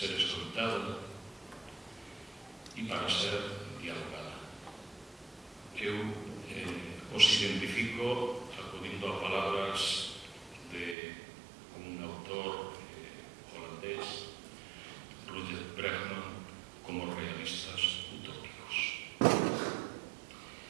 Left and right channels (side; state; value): left; drops out; at 11.0 s